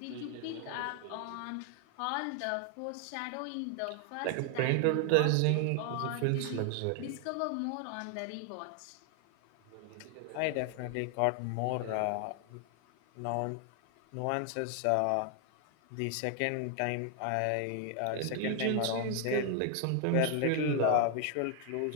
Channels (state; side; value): different; both; correlation 0.00